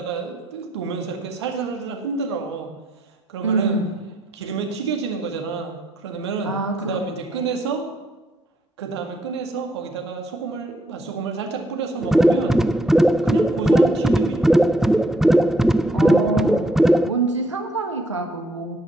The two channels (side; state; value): both; normal; correlation 0.72